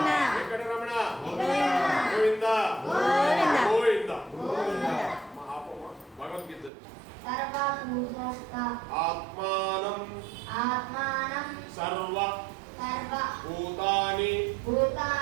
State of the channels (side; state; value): left; drops out; at 6.7 s